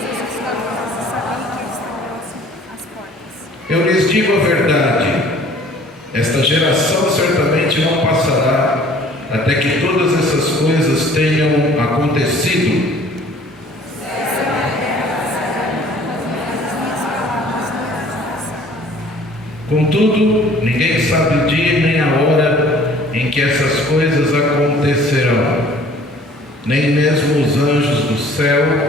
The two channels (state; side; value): normal; both; correlation 0.52